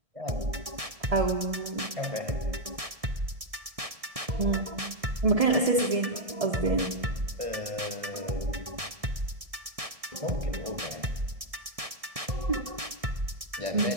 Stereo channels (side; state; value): left; late; 1.6 ms